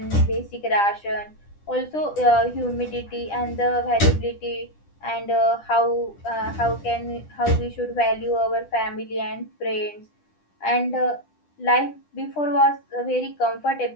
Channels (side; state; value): right; late; 10 ms